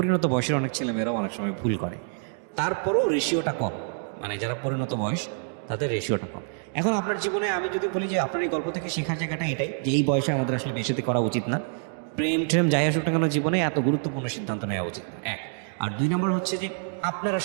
বয়সের অনেক ছেলেমেয়েরাও অনেক সময় ভুল করে। তারপরেও রেশিওটা কম, মানে যারা পরিণত বয়স তাদের রেশিওটা কম। এখন আপনার জীবনে আমি যদি বলি যে আপনার এই গল্প থেকে শেখার জায়গাটা এটাই, যে এই বয়সে আমাদের আসলে বেশিতে করা উচিত না, প্রেম ট্রেম যাই আসুক না কেন জীবনে এত গুরুত্বপূর্ণ সিদ্ধান্ত নেওয়া উচিত না, এক। আর 2 নম্বর হচ্ছে যে আপনার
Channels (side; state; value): left; silent; 59 dB below the other